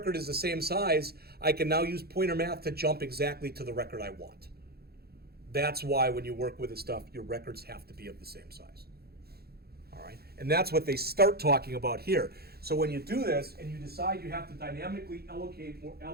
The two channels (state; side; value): late; left; 0.46 ms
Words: is the same size, I can now use pointer math to jump exactly to the record I want. That's why when you work with this stuff, your records have to be of the same size. All right? And that's what they start talking about here. So when you do this and you decide you have to dynamically allocate